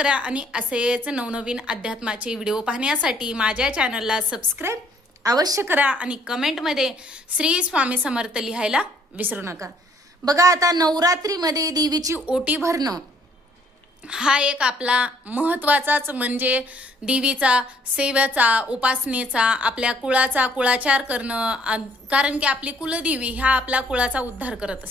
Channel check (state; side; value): normal; both; correlation 0.63